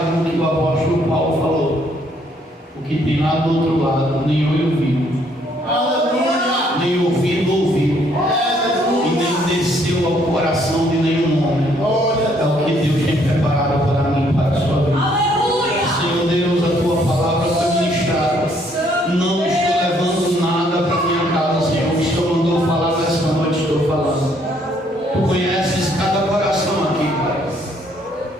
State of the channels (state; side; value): normal; both; correlation 0.67